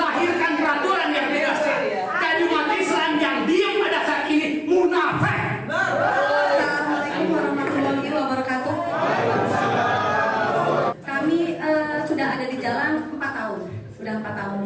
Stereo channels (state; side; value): identical; both; correlation 1.00